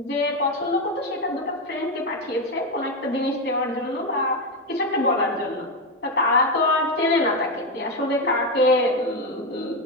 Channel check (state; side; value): normal; both; correlation 0.10